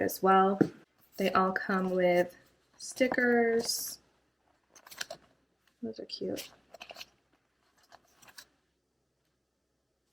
as well. They all come with stickers. Those are cute.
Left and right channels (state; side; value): identical; both; correlation 1.00